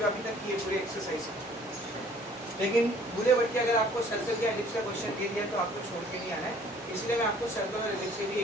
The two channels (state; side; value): normal; both; correlation 0.55